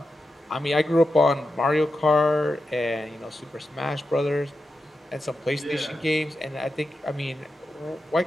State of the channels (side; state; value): both; normal; correlation 0.89